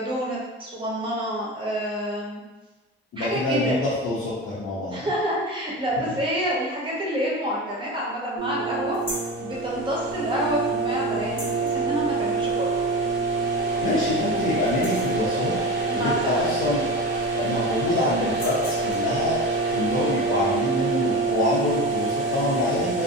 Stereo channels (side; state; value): both; normal; correlation 0.26